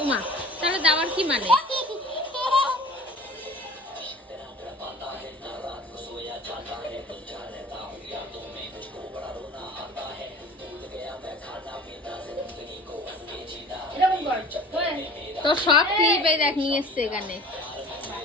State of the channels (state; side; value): normal; both; correlation 0.43